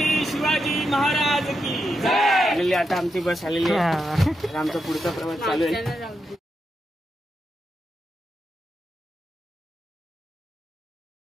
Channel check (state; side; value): normal; both; correlation 0.85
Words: शिवाजी महाराज की जय। आता आमची बस आलेली आहे, आमचा पुढचा प्रवास चालू आहे।